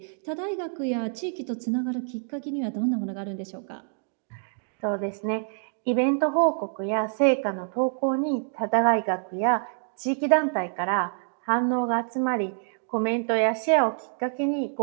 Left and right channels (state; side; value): silent; left; 60 dB below the other